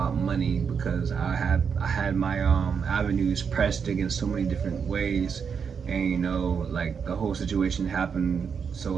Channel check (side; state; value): left; quieter; 6.5 dB